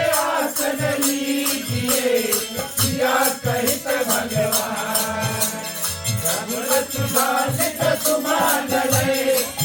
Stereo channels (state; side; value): identical; both; correlation 1.00